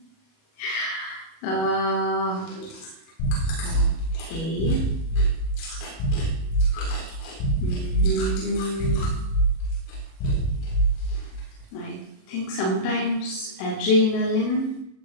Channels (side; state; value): right; late; 37 ms